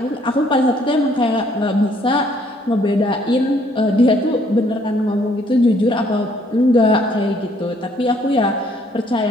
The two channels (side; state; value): both; normal; correlation 0.64